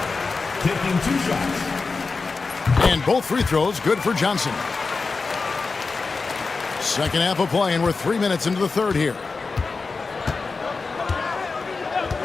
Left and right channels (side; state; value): right; quieter; 4.3 dB